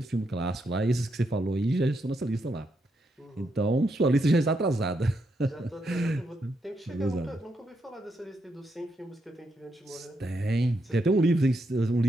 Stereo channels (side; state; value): both; normal; correlation 0.81